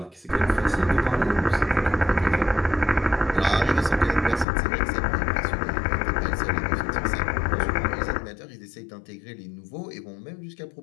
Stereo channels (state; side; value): drops out; right; at 4.5 s